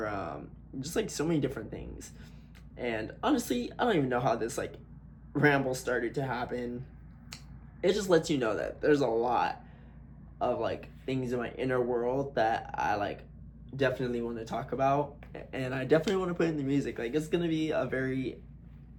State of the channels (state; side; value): identical; both; correlation 1.00